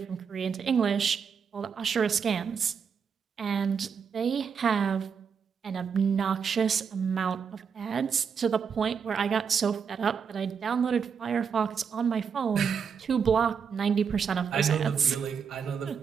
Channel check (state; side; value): quieter; left; 6.6 dB